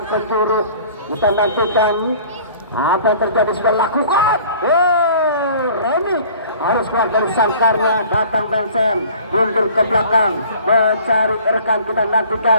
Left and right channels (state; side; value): inverted; both; correlation -0.49